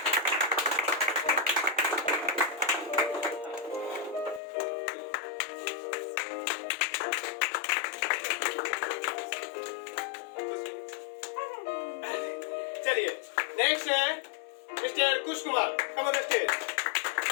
चलिए नेक्स्ट है mister Kush Kumar, come on the stage.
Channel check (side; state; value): right; drops out; at 4.4 s